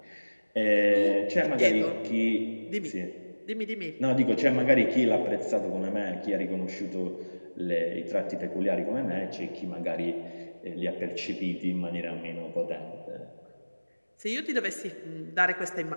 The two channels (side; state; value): both; inverted; correlation -1.00